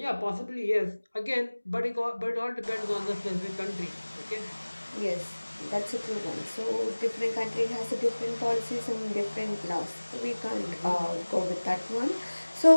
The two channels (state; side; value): inverted; both; correlation -1.00